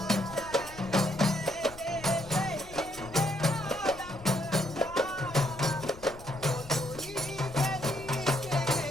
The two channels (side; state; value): left; noise; rumble, 18 dB below the sound